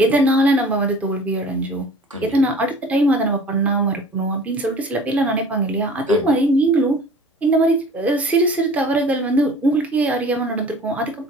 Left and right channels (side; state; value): both; normal; correlation 0.45